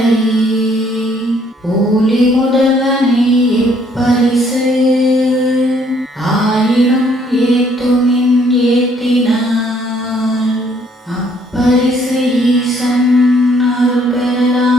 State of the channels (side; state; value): both; normal; correlation 0.65